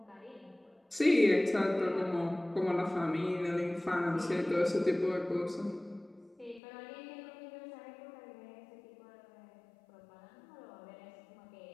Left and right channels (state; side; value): drops out; right; at 6.6 s